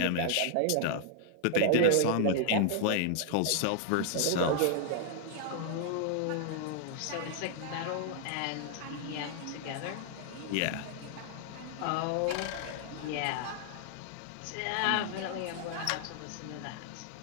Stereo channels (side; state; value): both; different; correlation 0.00